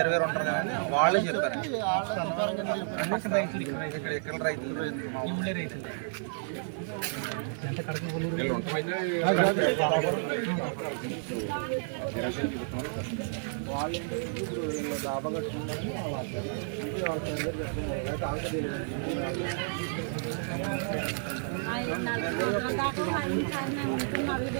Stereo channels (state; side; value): silent; left; digital silence